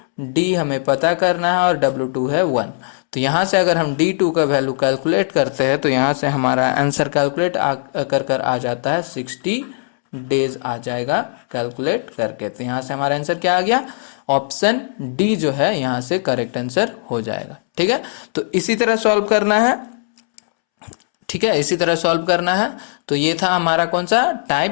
D हमें पता करना है, और W2 है 1। तो यहाँ से अगर हम D2 का वैल्यू कैलकुलेट करते हैं, तो यहाँ से हमारा आंसर कैलकुलेट कर आ जाता है 60 डेज आ जाएगा कैलकुलेट करके। तो यहाँ से हमारा आंसर क्या आ गया, ऑप्शन डी जो है यहाँ से करेक्ट आंसर हो जाएगा। ठीक है, तो इसी तरह सॉल्व करना है। ठीक है, इसी तरह सॉल्व करना है। तो ये था हमारा कौन सा,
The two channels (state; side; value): silent; right; 67 dB below the other